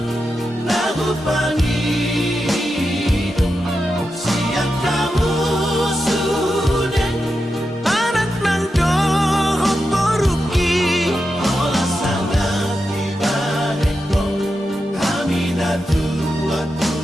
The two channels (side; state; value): both; normal; correlation 0.89